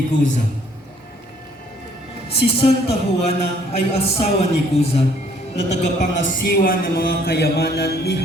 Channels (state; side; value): normal; both; correlation 0.61